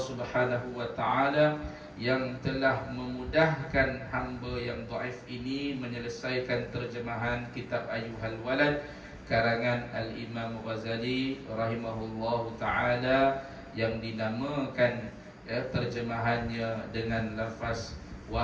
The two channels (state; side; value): identical; both; correlation 1.00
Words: Wa Taala yang telah memudahkan hamba yang dhaif ini menyelesaikan terjemahan kitab Ayyuhal Walad karangan Al-Imam Ghazali rahimahullahu taala, yang dinamakan terjemahannya dengan lafaz